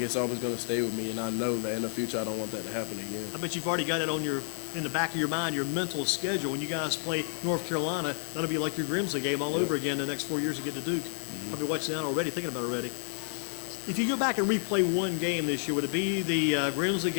always going to stay with me, and I know that in the future I don't want that to happen again. I bet you've already got it on in the back of your mind, your mental schedule. When you guys play North Carolina, that'll be like your Grimsley game all over again the next 4 years to get to Duke. Probably watching that already, thinking about it already. If you go back and replay one game this year, would it be the Grimsley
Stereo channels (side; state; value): right; silent; 58 dB below the other